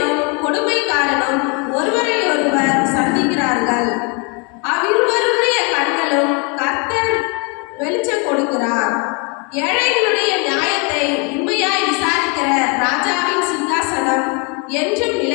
கொடுமைக்காரனும் ஒருவரை ஒருவர் சந்திக்கிறார்கள். அவ்விருவருடைய கண்களும் கர்த்தர் வெளிச்சம் கொடுக்கிறார். ஏழைகளுடைய நியாயத்தை உண்மையாய் விசாரிக்கிற ராஜாவின் சிங்காசனம் என்றும்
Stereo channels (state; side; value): quieter; right; 33.8 dB